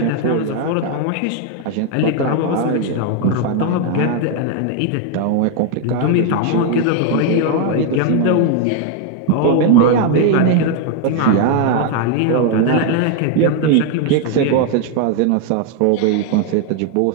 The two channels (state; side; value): different; both; correlation 0.00